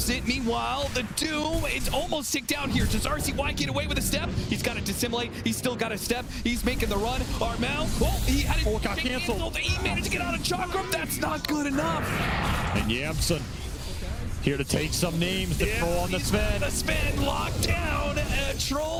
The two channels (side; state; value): both; identical; correlation 1.00